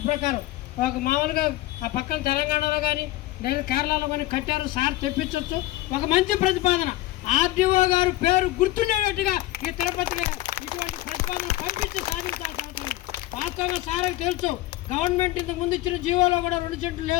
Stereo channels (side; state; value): right; quieter; 16.7 dB